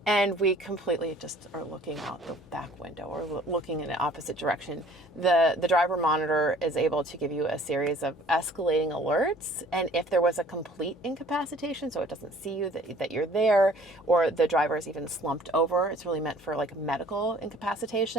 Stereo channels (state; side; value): normal; both; correlation 0.53